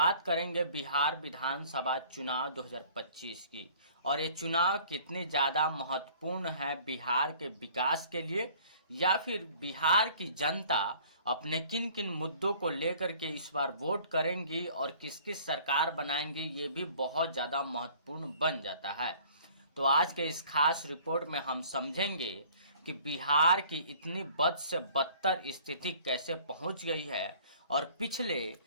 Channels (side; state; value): both; inverted; correlation -0.52